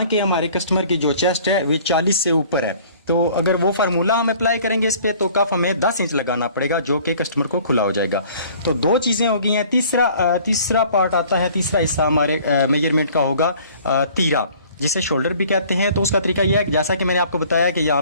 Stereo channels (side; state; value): both; inverted; correlation -0.52